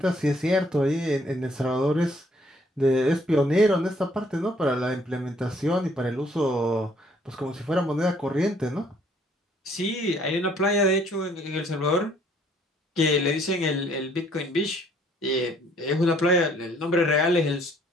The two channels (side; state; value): both; normal; correlation 0.63